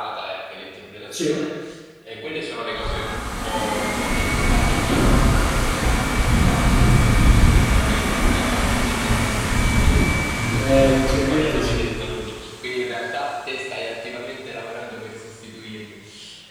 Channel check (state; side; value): identical; both; correlation 1.00